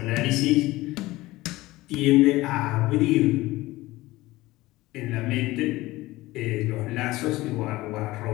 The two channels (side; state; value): right; quieter; 18.8 dB